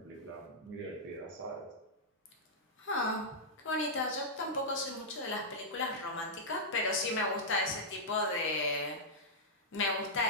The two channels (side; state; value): both; normal; correlation -0.09